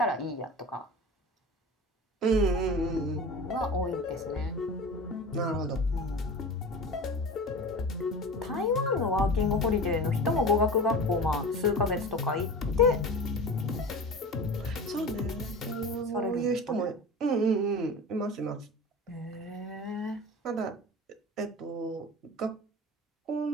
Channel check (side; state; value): both; normal; correlation 0.33